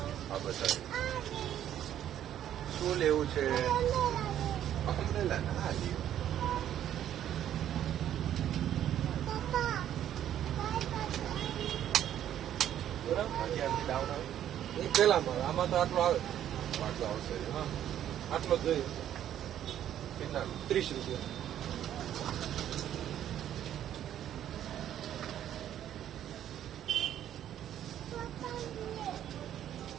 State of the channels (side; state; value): left; quieter; 10.9 dB